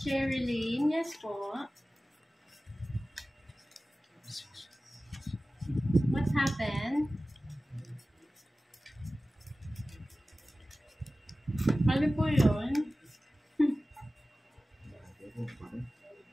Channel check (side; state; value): both; normal; correlation 0.96